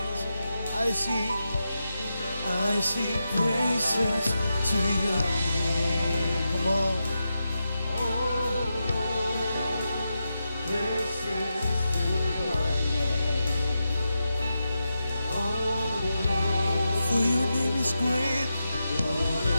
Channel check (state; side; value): inverted; both; correlation -0.88